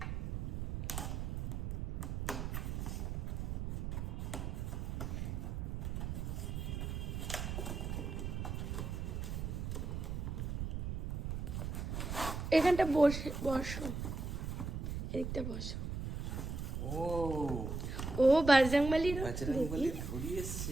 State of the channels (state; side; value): noise; right; rumble, 3 dB below the sound